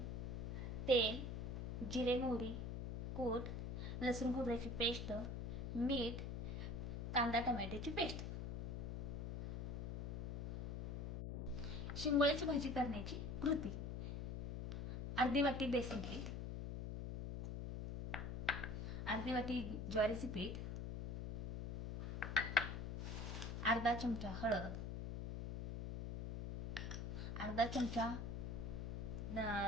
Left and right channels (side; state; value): left; noise; hum, 3 dB below the sound